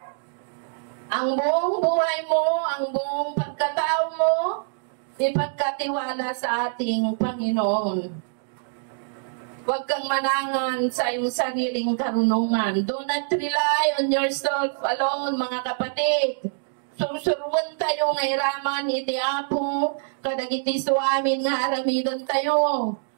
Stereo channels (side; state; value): left; silent; digital silence